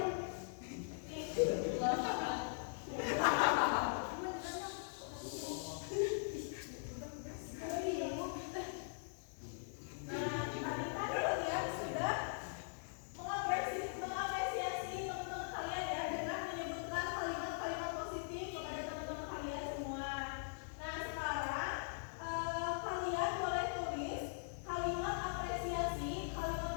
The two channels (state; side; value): silent; right; digital silence